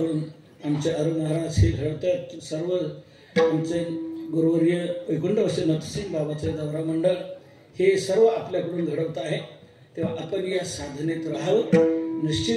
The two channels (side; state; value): both; identical; correlation 1.00